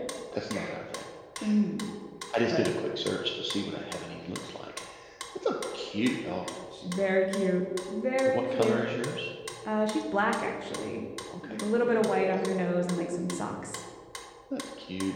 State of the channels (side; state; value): both; identical; correlation 1.00